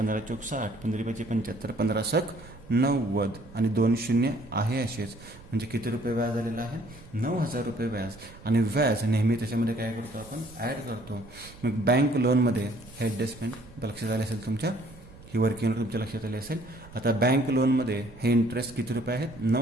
4 60, 15 5 75, 15 6 90 आणि 2 शून्य आहे असेच. म्हणजे किती रुपये व्याज आलेलं आहे? 9,000 रुपये व्याज. आणि व्याज नेहमी त्याच्यामध्ये काय करतो आपण? ॲड करतो. मग बँक लोनमध्ये हे ॲडजस्टमेंट लक्षात आले असेल तुमच्या, ही वर्किंग तुमच्या लक्षात आली असेल. आता बँक लोनमध्ये हे इंटरेस्ट किती रुपये आहेत?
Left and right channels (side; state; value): right; noise; rumble, 20 dB below the sound